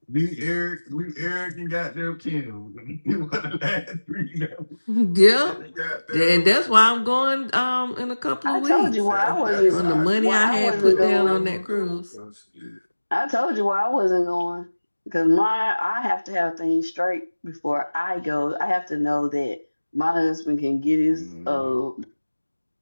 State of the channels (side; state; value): both; inverted; correlation -1.00